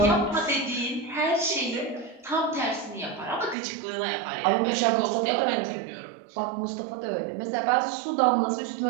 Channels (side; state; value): left; drops out; at 3.6 s